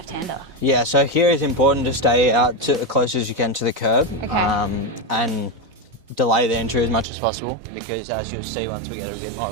Yeah, so here it's important to stay out to as close as you can to the curb. Okay. And delay the entry as much as possible because as you'll see once we get a bit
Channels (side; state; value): left; drops out; at 7.1 s